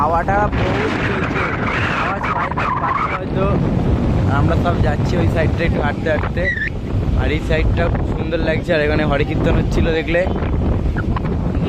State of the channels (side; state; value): both; identical; correlation 1.00